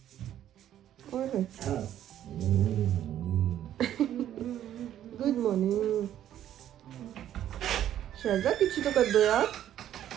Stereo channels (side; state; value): left; quieter; 11.4 dB